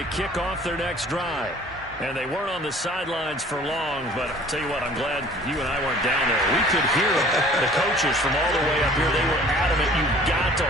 kick off their next drive. And they weren't on the sidelines for long, but I'll tell you what, I'm glad you and I weren't down there. We could hear the coaches from all the way up here. They were adamant, you've got to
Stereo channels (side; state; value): both; normal; correlation 0.50